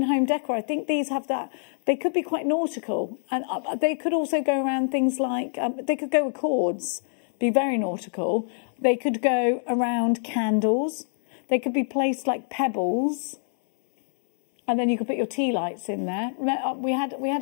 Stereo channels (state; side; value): silent; right; 62 dB below the other